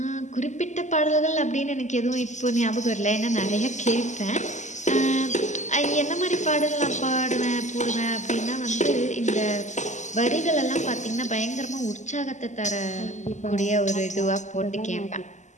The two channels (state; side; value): late; right; 0.34 ms